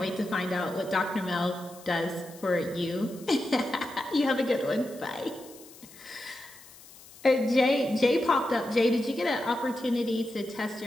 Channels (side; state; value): left; noise; hiss, 21 dB below the sound